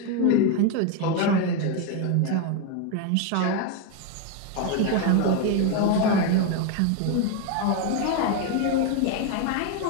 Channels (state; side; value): different; both; correlation 0.02